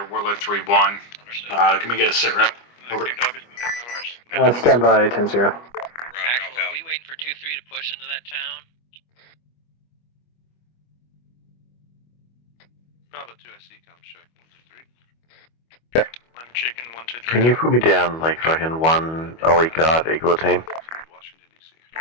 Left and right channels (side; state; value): right; late; 25 ms